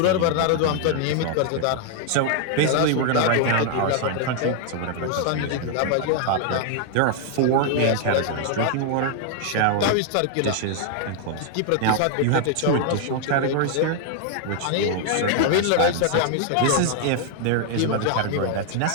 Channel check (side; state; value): both; different; correlation 0.00